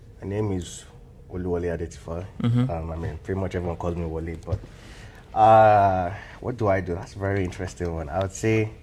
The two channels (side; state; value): both; identical; correlation 1.00